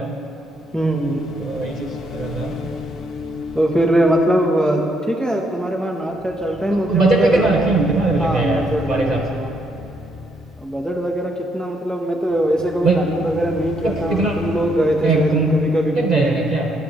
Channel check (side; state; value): both; normal; correlation 0.73